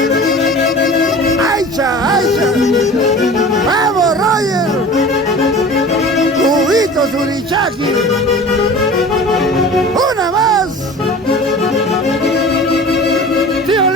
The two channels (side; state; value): both; normal; correlation 0.39